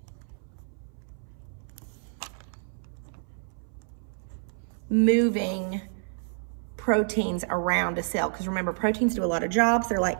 Moving proteins around a cell, because remember, proteins do a lot of jobs. They're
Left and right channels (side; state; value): left; silent; 59 dB below the other